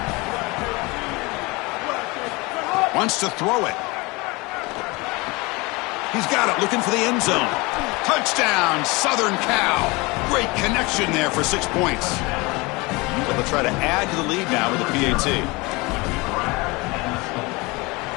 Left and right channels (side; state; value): right; quieter; 24.9 dB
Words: Wants to throw it. He's got it, looking for the end zone. Touchdown, Southern Cal. Great connection there for 6 points. So they'll try to add to the lead now with the PAT.